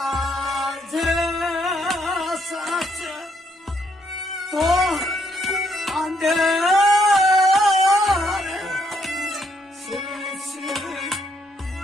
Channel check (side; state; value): both; normal; correlation 0.73